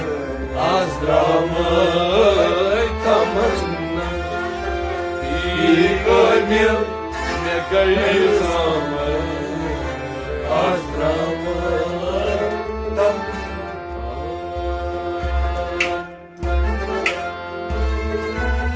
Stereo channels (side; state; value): both; identical; correlation 1.00